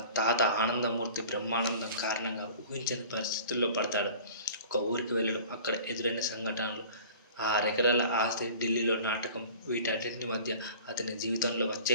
తాత ఆనందమూర్తి బ్రహ్మానందం కారణంగా ఊహించని పరిస్థితుల్లో పడతాడు. ఒక ఊరికి వెళ్ళడం, అక్కడ ఎదురైన సంఘటనలు, ఆ ఎకరాల ఆస్తి, ఢిల్లీలో నాటకం, వీటన్నింటి మధ్య అతని జీవితంలో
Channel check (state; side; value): inverted; both; correlation -0.44